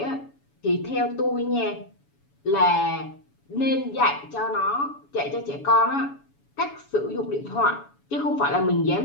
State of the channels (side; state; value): right; late; 7.1 ms